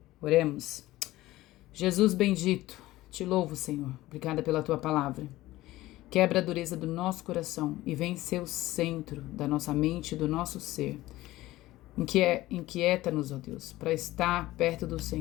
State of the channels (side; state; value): right; quieter; 17.0 dB